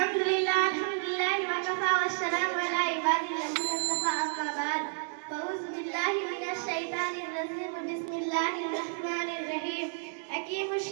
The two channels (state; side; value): silent; left; digital silence